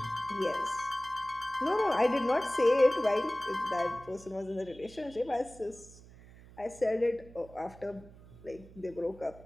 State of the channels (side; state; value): right; noise; hum, 20 dB below the sound